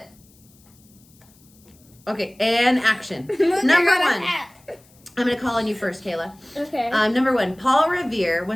Okay, and action. Number 1. I'm going to call on you first, Kayla. Okay. Number 1, Paul Revere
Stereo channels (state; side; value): noise; left; hiss, 29 dB below the sound